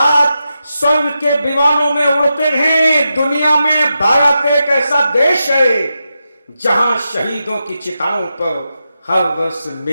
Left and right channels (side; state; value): both; inverted; correlation -0.88